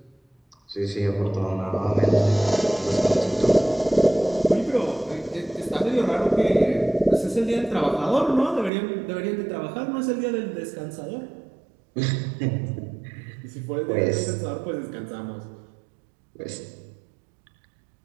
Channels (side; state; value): left; drops out; at 8.7 s